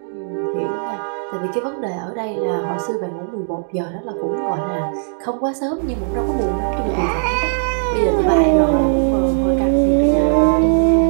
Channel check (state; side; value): silent; left; digital silence